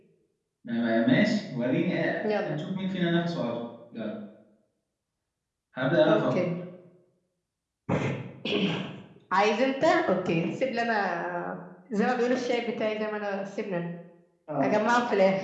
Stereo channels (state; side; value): identical; both; correlation 1.00